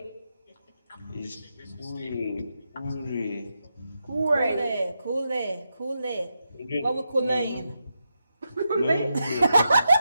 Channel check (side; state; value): both; inverted; correlation -0.86